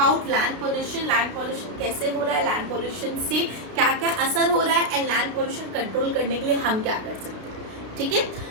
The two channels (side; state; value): left; late; 32 ms